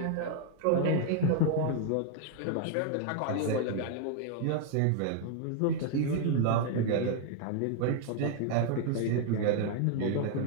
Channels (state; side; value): different; both; correlation 0.00